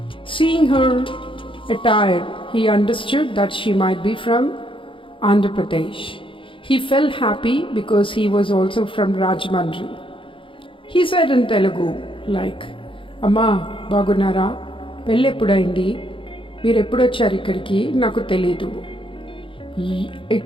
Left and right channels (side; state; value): right; late; 0.25 ms